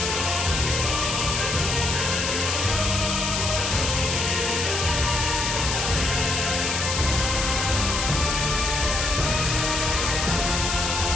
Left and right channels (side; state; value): left; noise; hiss, 1 dB below the sound